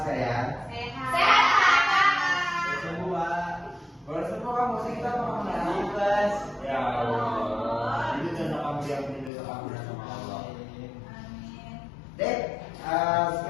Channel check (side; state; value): right; drops out; at 9.3 s